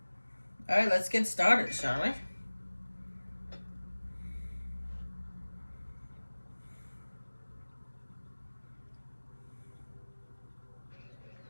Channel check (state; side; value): inverted; both; correlation -1.00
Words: Alright, let's get started, shall we?